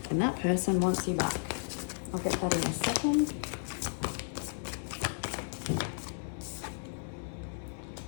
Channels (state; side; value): silent; right; 55 dB below the other